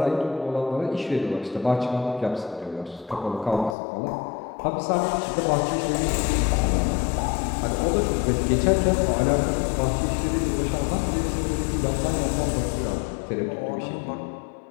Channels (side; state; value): right; drops out; at 3.8 s